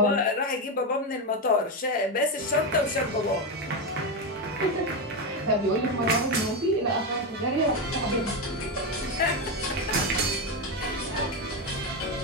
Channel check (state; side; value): normal; both; correlation 0.11